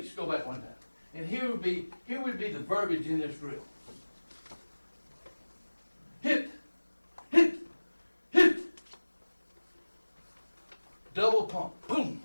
Go back one time. And here would be the verbiage in this drill. Hit, hit, hit. Double pump, boom,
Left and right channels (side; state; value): both; inverted; correlation -1.00